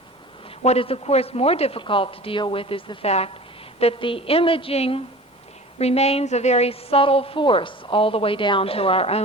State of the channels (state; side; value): normal; both; correlation 0.39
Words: What is, of course, more difficult to deal with is the fact that the imaging remains a very subtle force all the way down to our